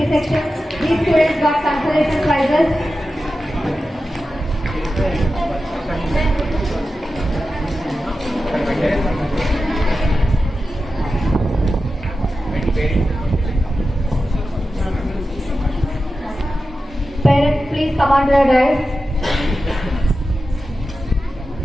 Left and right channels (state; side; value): normal; both; correlation 0.92